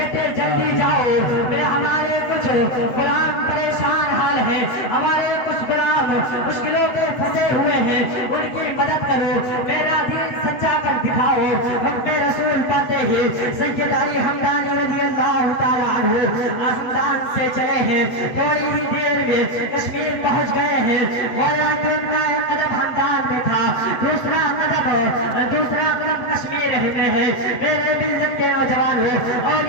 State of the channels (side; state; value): right; late; 8.0 ms